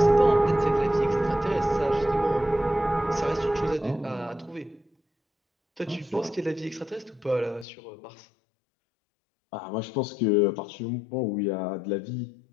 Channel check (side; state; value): right; drops out; at 7.7 s